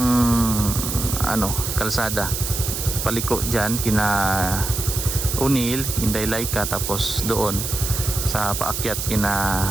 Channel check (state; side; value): noise; right; hiss, 4 dB below the sound